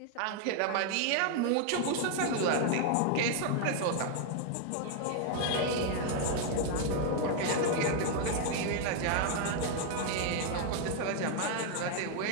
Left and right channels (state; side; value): different; both; correlation 0.00